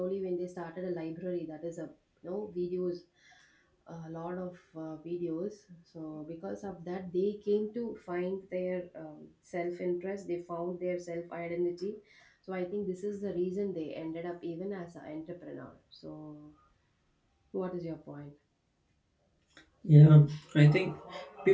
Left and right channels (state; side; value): identical; both; correlation 1.00